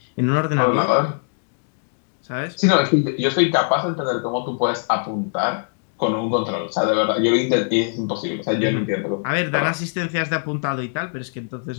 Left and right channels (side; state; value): right; silent; digital silence